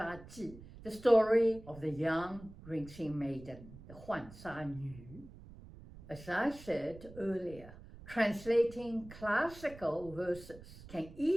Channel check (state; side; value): noise; right; rumble, 17 dB below the sound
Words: Ji, the story of the young rinsing maiden, the Huan Sha Nu. As I said earlier, translating classical verses can